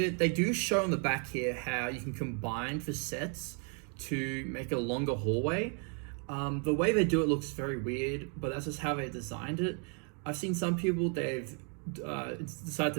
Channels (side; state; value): left; quieter; 39.8 dB